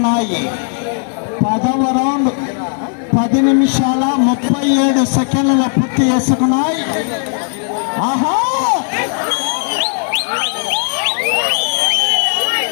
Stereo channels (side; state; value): right; silent; 56 dB below the other